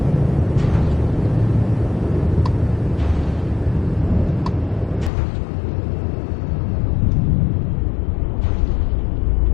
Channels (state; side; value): drops out; right; at 5.1 s